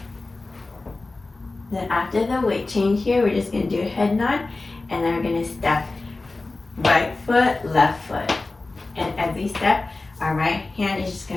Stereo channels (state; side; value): quieter; right; 3.3 dB